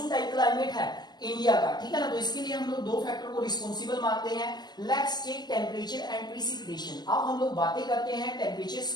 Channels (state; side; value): late; right; 0.20 ms